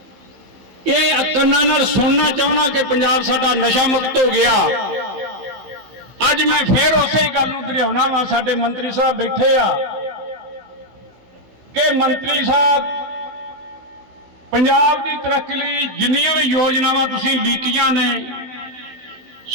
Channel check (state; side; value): late; left; 16 ms